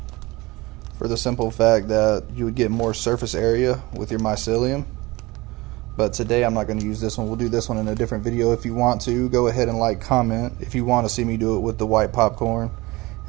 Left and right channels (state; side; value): quieter; left; 21.8 dB